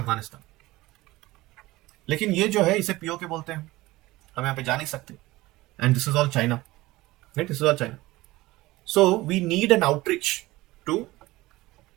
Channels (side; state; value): left; quieter; 19.1 dB